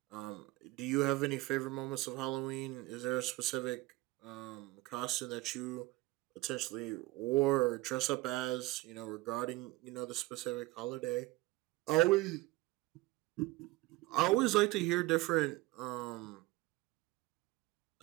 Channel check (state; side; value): quieter; left; 20.0 dB